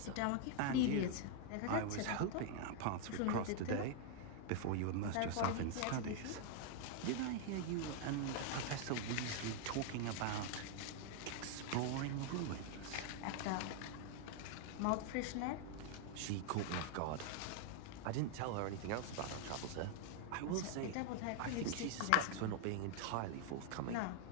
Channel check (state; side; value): different; both; correlation 0.00